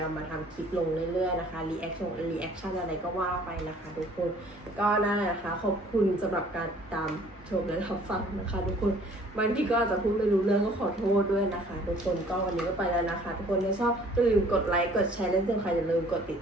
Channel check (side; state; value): both; normal; correlation 0.55